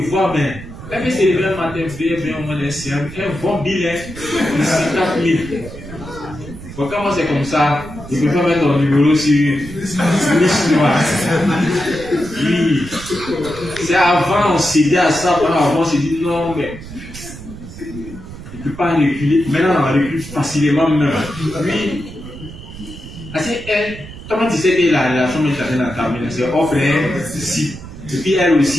voit, mais elle peut se lever un matin, bien au moins un bon bilan de 50 000. Bon, quand moi c'est comme ça, il ne peut pas mettre ton numéro sur liste noire. Oui. C'est avant, on cédait à ça, avant on s'est dit non, mais il ne peut pas reculer. Maintenant, on recule facilement même. Oui. Parce qu'elle, comment tu sais que la relation est dans ta main, c'est offre si. Et puis elle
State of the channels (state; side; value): noise; right; rumble, 14 dB below the sound